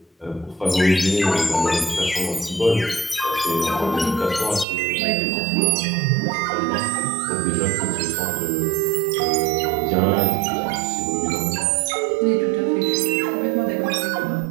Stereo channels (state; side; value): drops out; left; at 4.7 s